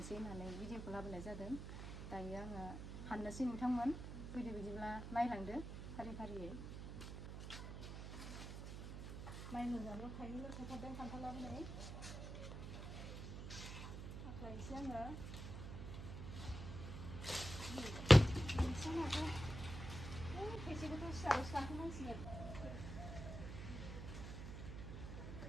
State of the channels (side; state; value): right; noise; hum, 8 dB below the sound